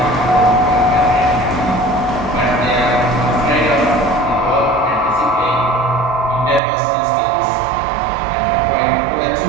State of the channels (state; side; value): drops out; left; at 6.6 s